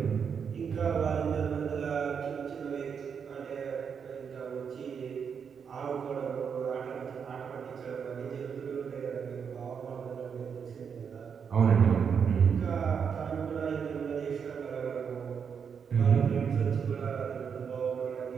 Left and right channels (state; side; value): quieter; left; 6.8 dB